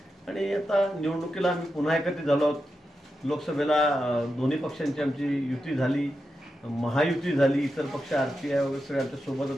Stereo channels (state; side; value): normal; both; correlation 0.88